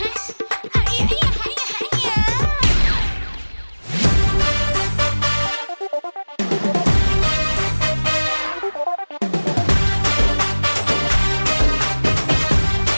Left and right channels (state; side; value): inverted; both; correlation -1.00